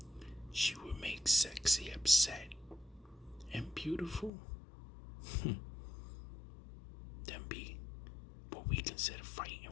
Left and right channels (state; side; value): drops out; right; at 4.3 s